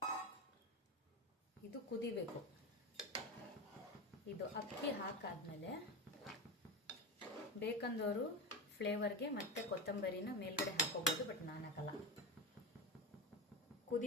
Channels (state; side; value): normal; both; correlation 0.19